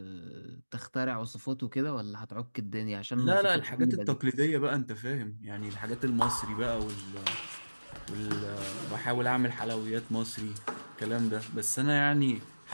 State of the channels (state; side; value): inverted; both; correlation -1.00